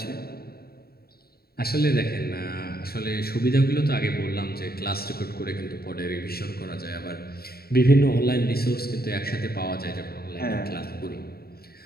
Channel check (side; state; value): right; late; 0.45 ms